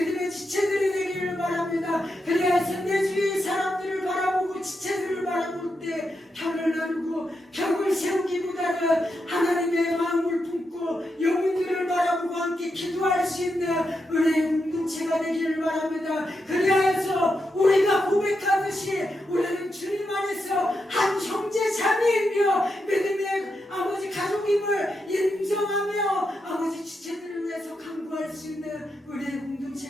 지체들이 되기를 바랍니다. 그리하여서 내 주위의 사람들을 바라보고 지체들을 바라볼 때 편을 나누고 벽을 세우기보다는 하나님의 마음을 품고 영혼들을 바라보고 함께 기도할 수 있는 은혜의 공동체가 되기를 바랍니다. 그리하여서 우리가 고백하듯이 우리는 주님 안에서 한 형제 자매이며 믿음의 아버지 가족임을 인정하며 아버지 지체들을 위해서 간구할 수 있는 은혜의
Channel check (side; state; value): both; normal; correlation 0.85